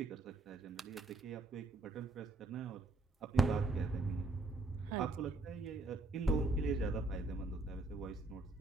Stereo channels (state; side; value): quieter; left; 3.1 dB